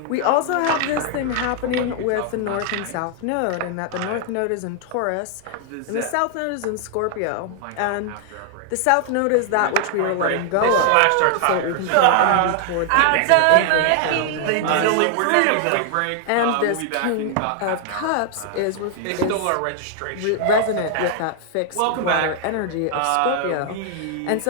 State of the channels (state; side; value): different; both; correlation 0.00